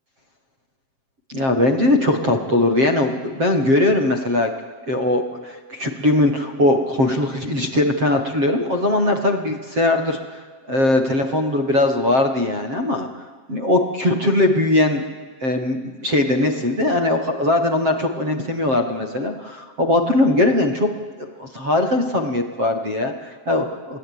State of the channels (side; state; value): left; late; 7.5 ms